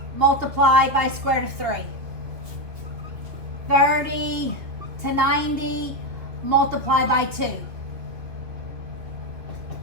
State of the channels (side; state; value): left; late; 2.9 ms